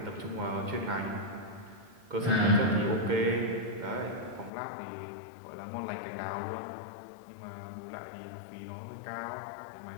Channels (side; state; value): right; drops out; at 4.5 s